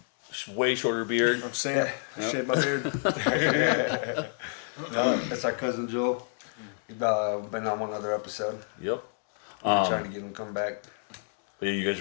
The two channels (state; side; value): silent; right; digital silence